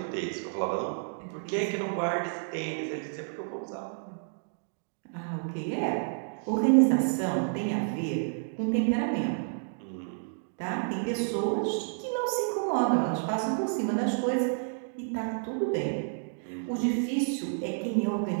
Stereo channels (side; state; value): left; silent; digital silence